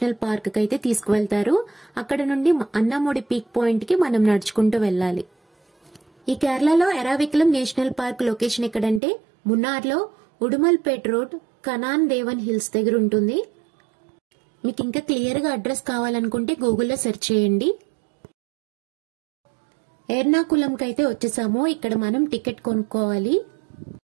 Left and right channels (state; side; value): drops out; left; at 9.0 s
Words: పార్క్ కి అయితే తీసుకువెళ్తారు. అక్కడ నుండి అన్నాముడి పీక్ పాయింట్ కి మనం నడుచుకుంటూ వెళ్ళాలి. ఈ కేరళలో ఎరావికులం నేషనల్ పార్క్ లొకేషన్ ఎక్కడంటే మున్నార్లో ఉడుమల్పేట్ రోడ్ కనాన్ దేవన్ హిల్స్ దగ్గర ఉంటుంది. మీకు ఇంకా క్లియర్ గా అడ్రస్ కావాలనుకుంటే గూగుల్లో సెర్చ్ చేయండి. ఎర్నాకులంకి అయితే వచ్చేసాము. ఇక్కడ మనం టికెట్ కొనుక్కోవాలి.